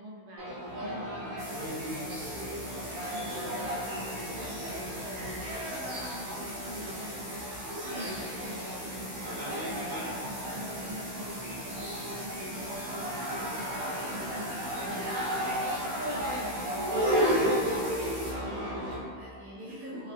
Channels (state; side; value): late; left; 15 ms